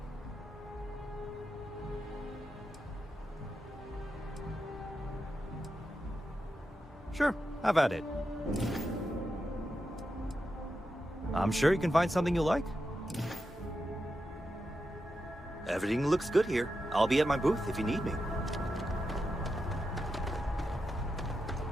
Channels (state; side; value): normal; both; correlation 0.88